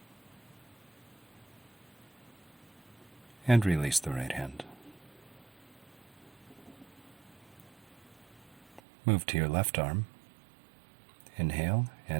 And release the right hand. Move to your left arm. Inhale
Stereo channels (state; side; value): drops out; left; at 8.8 s